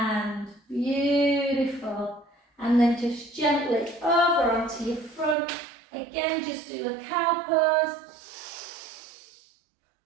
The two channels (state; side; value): drops out; left; at 5.4 s